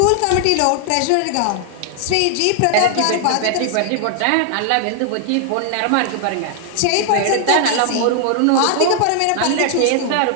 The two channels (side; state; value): both; different; correlation 0.00